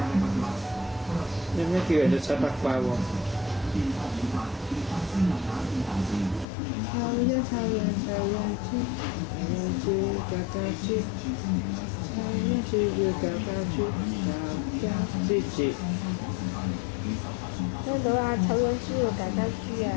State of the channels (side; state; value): right; drops out; at 6.5 s